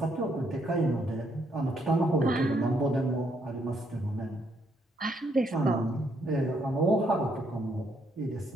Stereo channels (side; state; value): both; normal; correlation 0.73